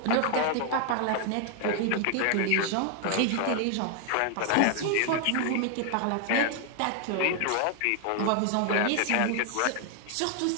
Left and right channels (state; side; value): different; both; correlation 0.00